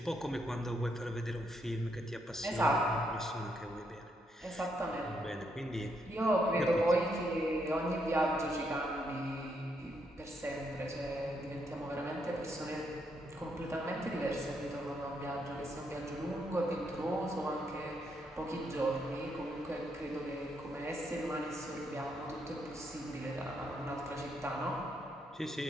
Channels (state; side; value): normal; both; correlation 0.77